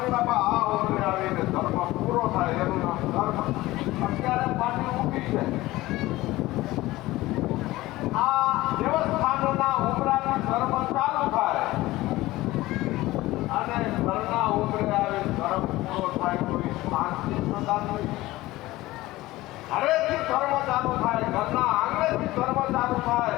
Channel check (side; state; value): right; quieter; 18.0 dB